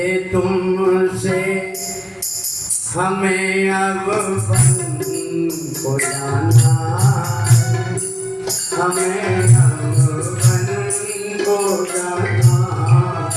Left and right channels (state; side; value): identical; both; correlation 1.00